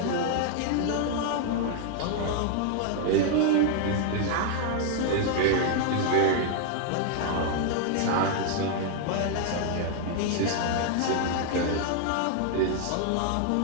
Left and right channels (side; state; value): both; different; correlation 0.00